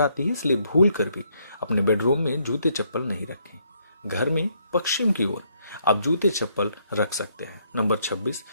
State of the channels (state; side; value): inverted; both; correlation -0.72